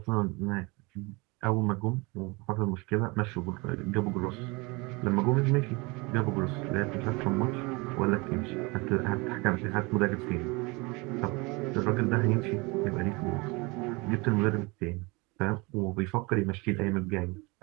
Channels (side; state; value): left; quieter; 26.3 dB